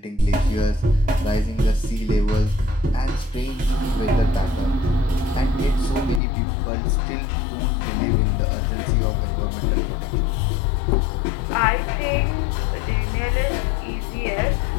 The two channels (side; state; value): right; drops out; at 6.2 s